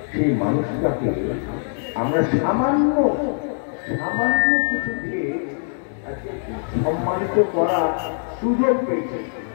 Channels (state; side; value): silent; right; 64 dB below the other